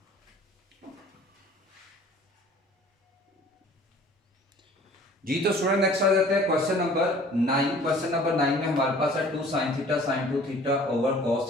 जी तो स्टूडेंट नेक्स्ट आ जाते हैं क्वेश्चन नंबर 9। क्वेश्चन नंबर 9 में हमारे पास है 2 sin theta sin 2 theta over cos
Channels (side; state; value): both; normal; correlation 0.50